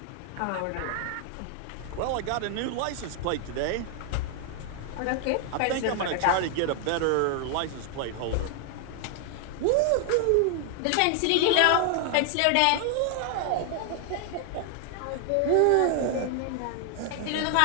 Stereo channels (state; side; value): different; both; correlation 0.00